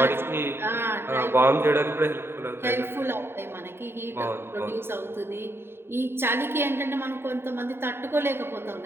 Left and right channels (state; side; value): late; left; 0.11 ms